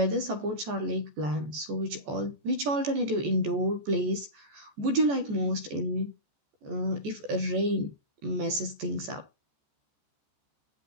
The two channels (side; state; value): left; late; 14 ms